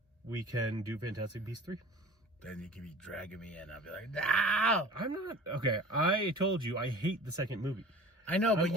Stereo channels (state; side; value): normal; both; correlation 0.42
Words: we can do Fantastic Beasts 3. Then you can be dragging me in. I'll be like, no! I'm not. Okay, I told you I hate the second movie. I know, but